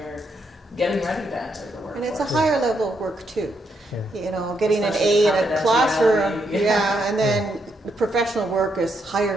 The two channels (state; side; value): normal; both; correlation 0.78